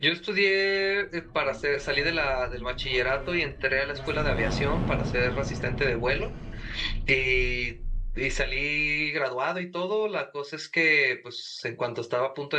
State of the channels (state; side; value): identical; both; correlation 1.00